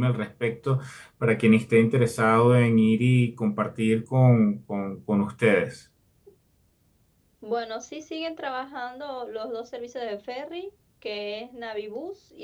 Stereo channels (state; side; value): identical; both; correlation 1.00